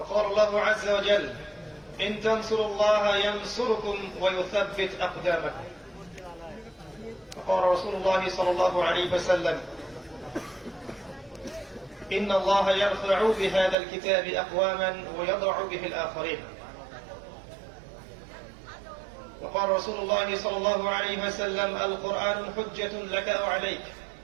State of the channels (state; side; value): drops out; left; at 13.8 s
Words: الله عز وجل إن تنصروا الله ينصركم ويثبت أقدامكم فقال رسول الله صلى الله عليه وسلم إن الله يرفع بهذا الكتاب أقواما ويضع به الآخرين وقال رسول الله صلى الله عليه وسلم القرآن حجة لك أو عليك